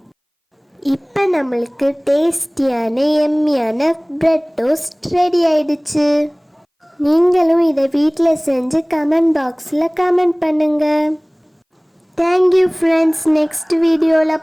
இப்போ நம்மளுக்கு டேஸ்டியான எம்மியான பிரெட் டோஸ்ட் ரெடி ஆயிடுச்சு. நீங்களும் இதை வீட்டில் செஞ்சு கமெண்ட் பாக்ஸில் கமெண்ட் பண்ணுங்க. Thank you friends. நெக்ஸ்ட்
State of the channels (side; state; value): both; identical; correlation 1.00